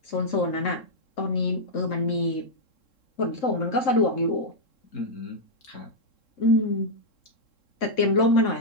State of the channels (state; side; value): late; right; 3.7 ms